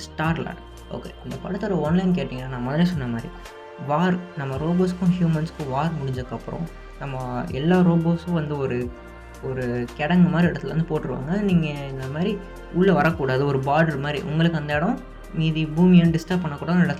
ஸ்டார்லார்ட். ஓகே, இந்த படத்தோட ஒன்லைன் கேட்டிங்கன்னா நான் முதல்ல சொன்ன மாதிரி வார், நம்ம ரோபோஸ்க்கும் ஹியூமன்ஸ்க்கும் வார் முடிஞ்சதுக்கப்புறம் நம்ம எல்லா ரோபோஸும் வந்து ஒரு கிடங்கு மாதிரி இடத்துல வந்து போட்டுருவாங்க. நீங்கள் இந்த மாதிரி உள்ளே வரக்கூடாது, ஒரு பார்டர் மாதிரி உங்களுக்கு அந்த இடம் மீதி பூமியை டிஸ்டர்ப் பண்ணக்கூடாது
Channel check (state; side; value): identical; both; correlation 1.00